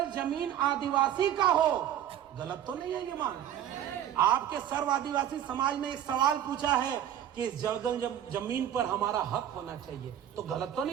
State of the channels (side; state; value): left; quieter; 10.8 dB